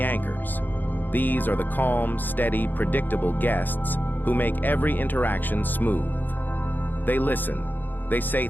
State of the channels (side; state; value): right; late; 0.089 ms